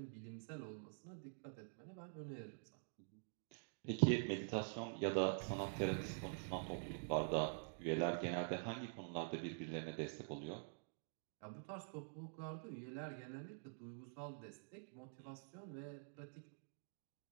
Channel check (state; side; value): silent; left; digital silence